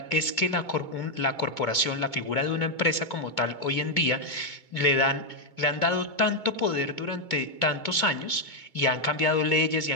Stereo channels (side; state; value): right; late; 2.2 ms